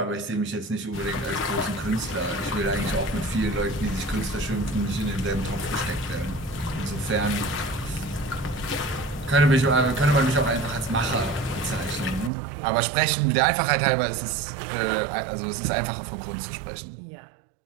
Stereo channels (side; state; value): left; drops out; at 12.3 s